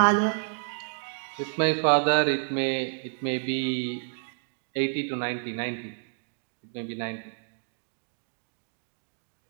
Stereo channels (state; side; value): silent; left; digital silence